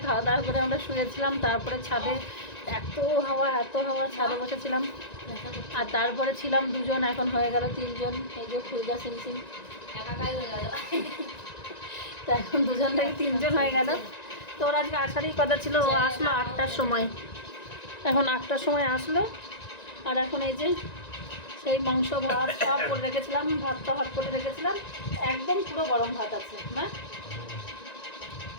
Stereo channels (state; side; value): late; right; 1.9 ms